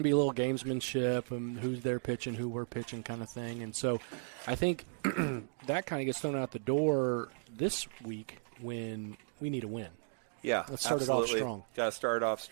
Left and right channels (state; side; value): silent; left; digital silence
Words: to be a little gamesmanship, who's there pitching, who we're pitching kind of thing. And so I think that kind of gets thrown out the door this week when we need a win. Yeah, let's start it off strong. Got to start off